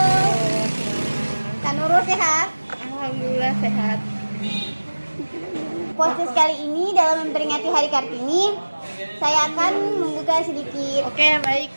Kanurul sehat? Alhamdulillah sehat. Podcast kali ini dalam memperingati Hari Kartini, saya akan membuka sedikit. Oke, baik.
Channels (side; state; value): both; inverted; correlation -1.00